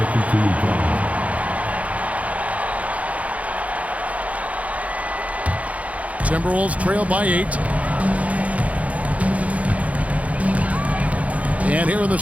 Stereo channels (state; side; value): late; left; 0.067 ms